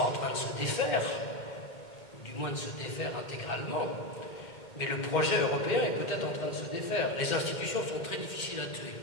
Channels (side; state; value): right; late; 2.1 ms